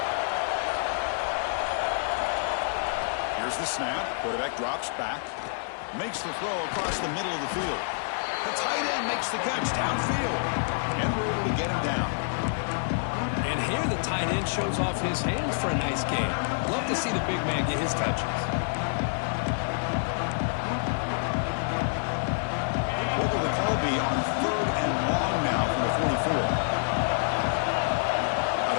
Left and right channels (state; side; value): silent; right; digital silence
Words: Here's the snap. Quarterback drops back. Makes the throw across the middle of the field. The tight end makes the catch downfield. And we're able to get him down. And here the tight end shows off his hands for a nice game. Love to see the big man get his touches. What will the call be on third and long now from the 44? Out